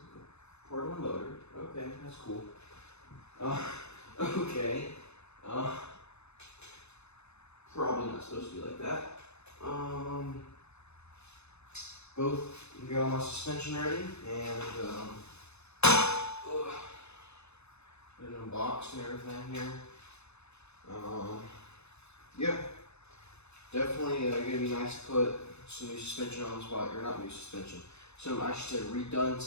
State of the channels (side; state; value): right; late; 0.81 ms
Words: part of the motor. Okay, that's cool. Okay. Probably not supposed to be like that. Both got all my suspension ready and put it unboxed and everything here. Yeah, definitely gonna be nice to put some new suspension on this bike, or not new suspension. So I should say redone